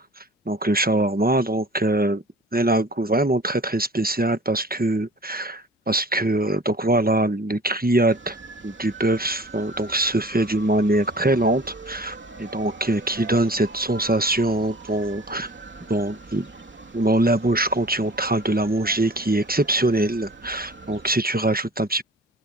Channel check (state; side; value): normal; both; correlation 0.45